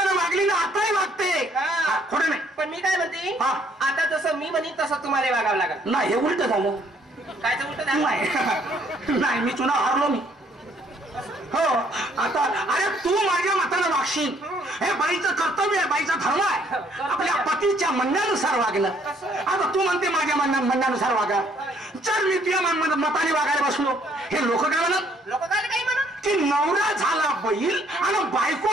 वागली ना आताही वागते. हा. खोटं नाही. पण मी काय म्हणते हा. आता जसं मी म्हणेन तसं तुम्हाला वागावं लागेल. नाही हे उलट झालं. कायचं उलट झालं? नाही नाही मी चुनाव हारलो मी. हो आता अरे तू माझ्या मतानं वागशील. हे बाईचं कर्तव्य आहे बाईचा धर्म आहे आपल्या पतीच्या म्हणण्यानुसार वागणं. आता तू म्हणते माझ्या म्हणण्यानुसार वागा. जर मी तुझ्या मताने वागायला बसलो हे लोक काय म्हणत लोक काय काही म्हणत की नवरा झाला बैल आणि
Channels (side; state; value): both; normal; correlation 0.65